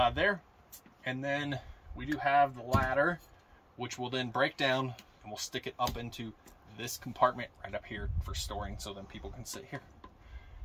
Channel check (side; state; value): both; identical; correlation 1.00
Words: there. And then we do have the ladder, which will then break down and we'll stick it up into this compartment right up here for storing, so then people can sit here.